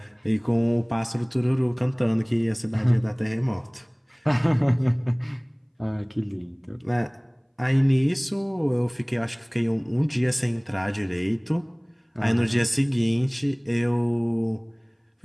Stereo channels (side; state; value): both; identical; correlation 1.00